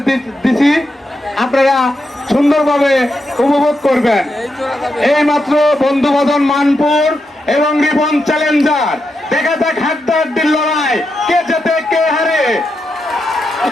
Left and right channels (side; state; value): both; normal; correlation 0.85